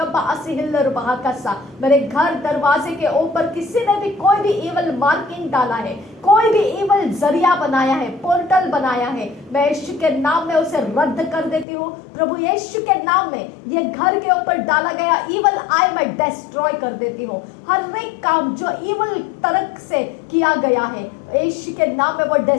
असिहिल्लर बहाकसा। मेरे घर दरवाजे के ऊपर किसी ने भी कोई भी इवल मार्किंग डाला है, कोई भी इवल जरिया बनाया है, पोर्टल बनाया है, मैं यीशु के नाम में उसे रद्द कर देती हूँ। प्रभु यीशु के नाम में ये घर के ऊपर डाला गया इवल आई मैं डिस्ट्रॉय कर देती हूँ। हर एक काम जो इवल तर्क से किया गया है, यीशु के नाम में वो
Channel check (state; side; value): drops out; right; at 11.7 s